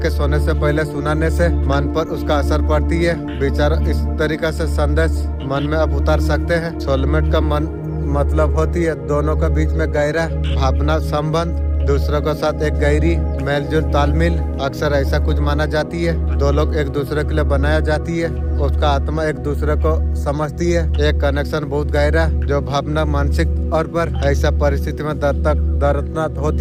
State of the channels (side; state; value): both; identical; correlation 1.00